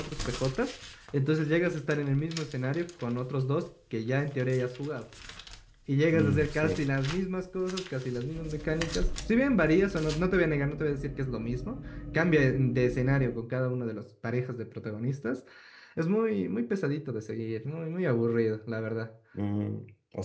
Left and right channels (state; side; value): identical; both; correlation 1.00